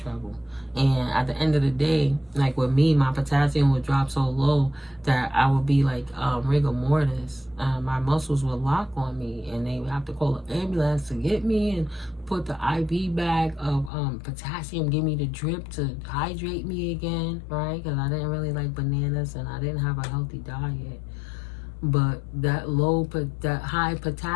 trouble. And at the end of the day, like with me, my potassium would drop so low that I would be like rigor mortis. My muscles would lock on me, and they would have to call an ambulance to get me and put the IV bag of potassium, give me the drip to hydrate me again, right? Because I didn't really like bananas and I didn't have a healthy diet. But that high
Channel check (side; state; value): right; drops out; at 13.9 s